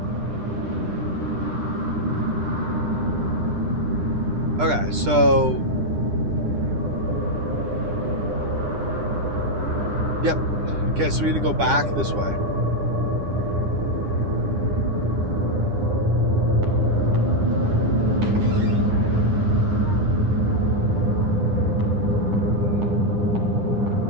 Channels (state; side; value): late; left; 9.9 ms